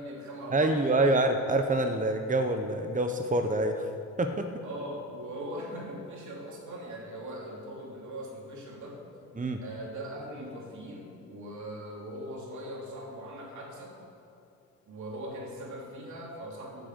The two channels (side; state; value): both; normal; correlation 0.26